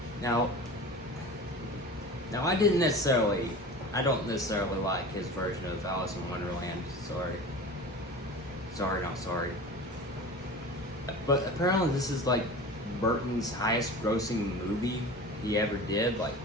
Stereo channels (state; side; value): normal; both; correlation 0.35